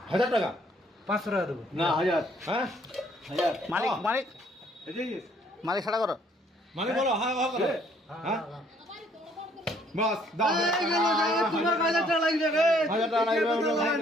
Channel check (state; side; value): normal; both; correlation 0.63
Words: 1000 টাকা 500 টাকা দেবো না 1000। হ্যাঁ 1000 মালিক মালিক মালিক ছাড়া করো। মানে বলো হ্যাঁ হ্যাঁ বাস দাও। তোমার 1000 টাকা লাগবে রে। 1000 টাকা লাগবে।